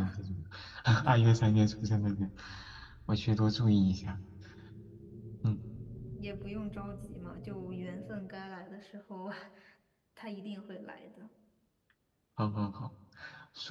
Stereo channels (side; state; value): both; identical; correlation 1.00